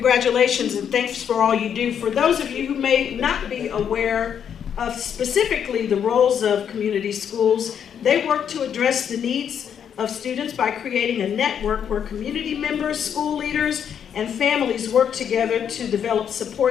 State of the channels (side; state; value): right; quieter; 8.3 dB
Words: and thanks for all you do. For those of you who may not be aware of specifically the roles of community schools, they work to address the needs of students by creating a network where community members, school leaders, and families work together to develop